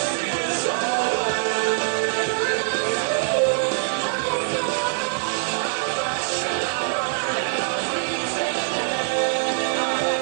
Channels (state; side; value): silent; left; digital silence